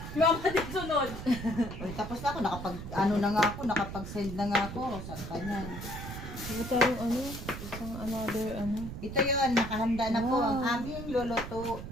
Mama din sunod. Uy, tapos na ako. Nakapag-send na nga ako. Saan pa yan? Ito tayong isang another Ito yun, nakahanda na po ang aming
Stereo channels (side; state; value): right; noise; rumble, 9 dB below the sound